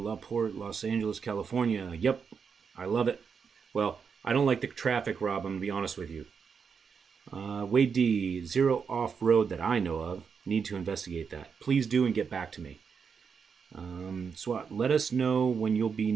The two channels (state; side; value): quieter; left; 6.2 dB